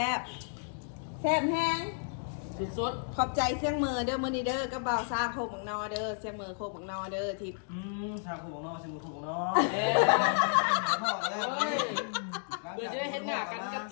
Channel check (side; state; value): right; silent; digital silence